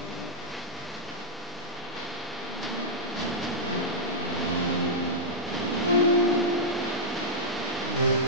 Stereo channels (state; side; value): normal; both; correlation -0.09